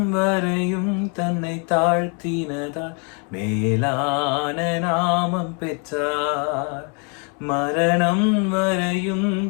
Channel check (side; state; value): right; quieter; 37.5 dB